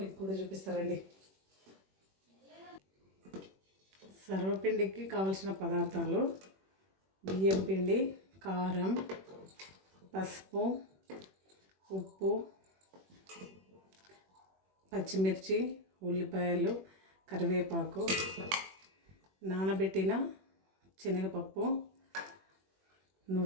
మీకు కూడా చూపిస్తారండి. సర్వపిండికి కావలసిన పదార్థాలు: బియ్యం పిండి, కారం, పసుపు, ఉప్పు, పచ్చిమిర్చి, ఉల్లిపాయలు, కరివేపాకు, నానబెట్టిన శనగపప్పు,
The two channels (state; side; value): late; left; 21 ms